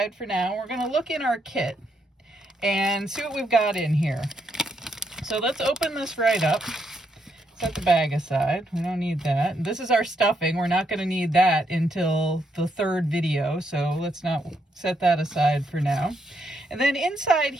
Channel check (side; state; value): both; normal; correlation 0.77